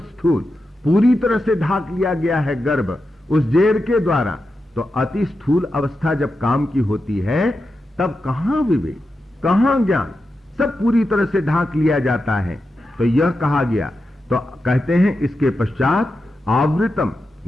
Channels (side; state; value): both; normal; correlation 0.89